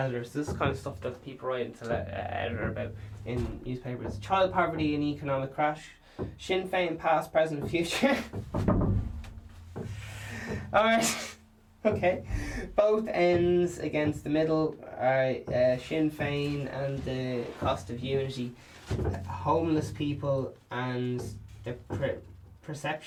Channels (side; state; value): both; identical; correlation 1.00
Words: This is kind of stuff that people write to the editor about in newspapers. Child poverty and economic crash. Sinn Féin past, present, future. Alright. Okay. Both ends against the middle. Alright, Sinn Féin and the cost of unity. Homeless people and the